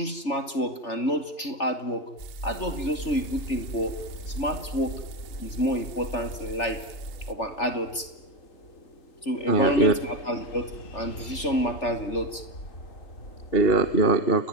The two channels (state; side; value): late; right; 3.4 ms